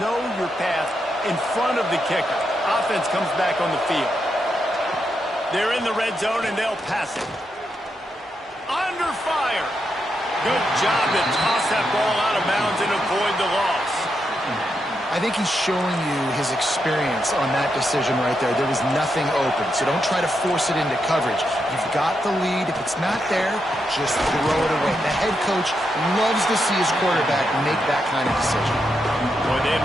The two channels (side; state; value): both; normal; correlation 0.83